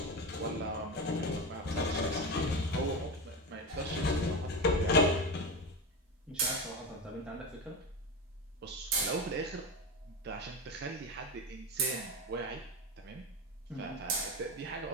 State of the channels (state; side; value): normal; both; correlation 0.19